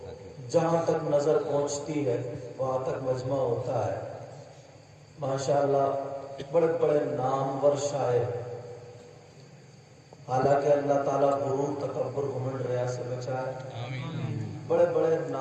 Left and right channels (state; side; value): identical; both; correlation 1.00